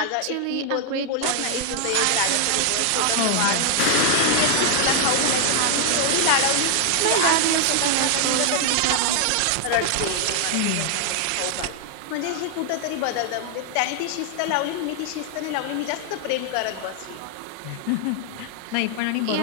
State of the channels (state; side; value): different; both; correlation 0.00